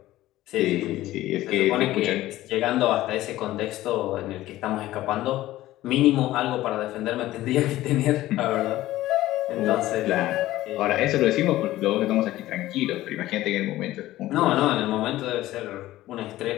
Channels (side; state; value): right; quieter; 15.6 dB